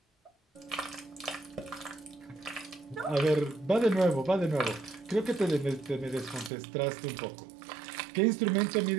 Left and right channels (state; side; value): drops out; left; at 6.5 s